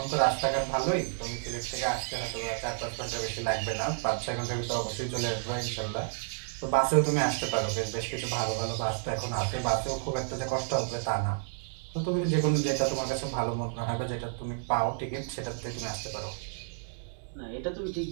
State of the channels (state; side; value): silent; left; 57 dB below the other